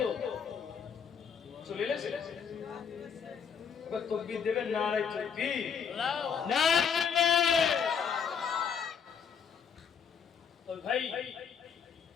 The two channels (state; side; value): quieter; right; 6.9 dB